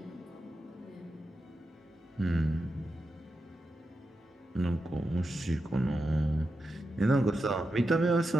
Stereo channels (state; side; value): normal; both; correlation 0.88